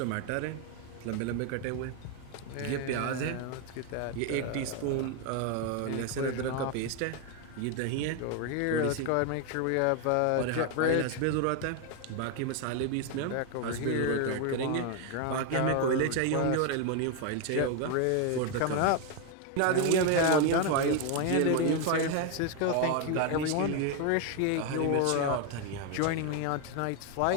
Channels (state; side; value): different; both; correlation 0.01